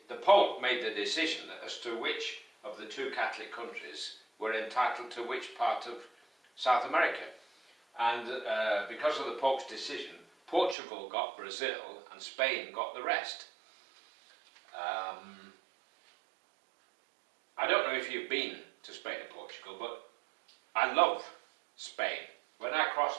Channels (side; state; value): left; drops out; at 10.8 s